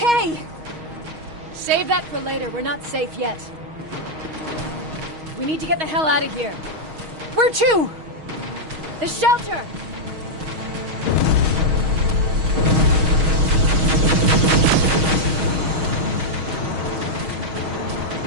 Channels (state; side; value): late; left; 6.3 ms